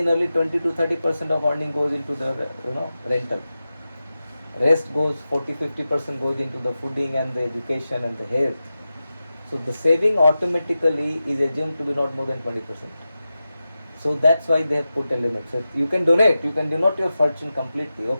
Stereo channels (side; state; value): both; inverted; correlation -0.93